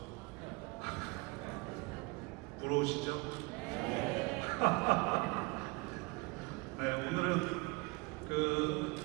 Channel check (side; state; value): left; quieter; 26.1 dB